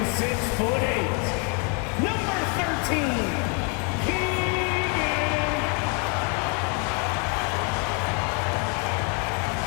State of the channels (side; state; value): right; quieter; 33.9 dB